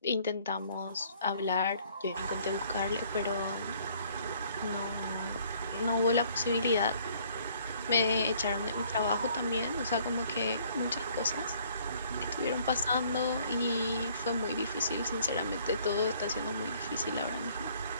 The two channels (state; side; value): inverted; both; correlation -0.60